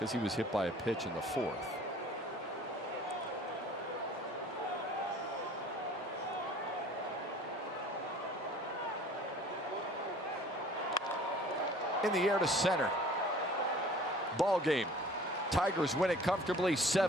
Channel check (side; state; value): both; normal; correlation 0.49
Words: he was hit by a pitch in the 4th. In the air to center. Ball game. Tigers win it comfortably